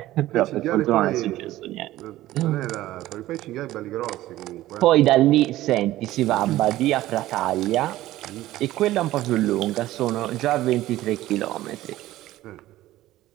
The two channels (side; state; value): left; quieter; 15.5 dB